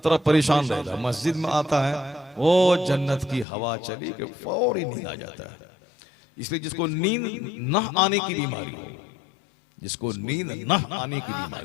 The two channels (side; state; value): right; drops out; at 3.5 s